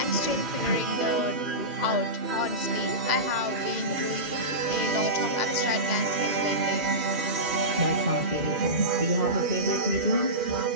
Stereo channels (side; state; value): left; late; 2.0 ms